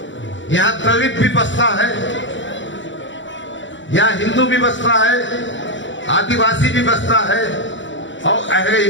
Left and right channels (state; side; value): late; right; 0.54 ms